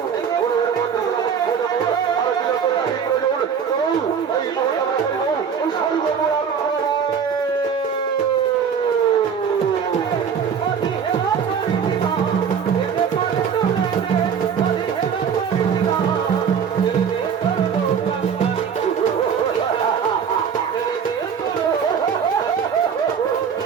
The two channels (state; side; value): quieter; left; 7.0 dB